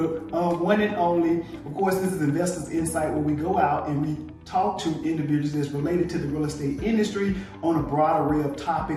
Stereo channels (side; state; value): both; identical; correlation 1.00